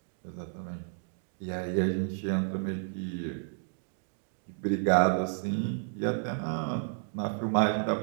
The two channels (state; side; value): silent; left; digital silence